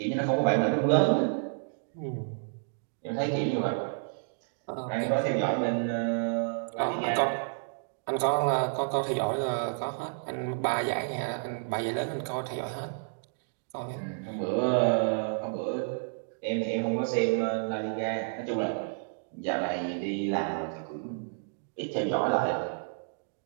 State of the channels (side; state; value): left; silent; digital silence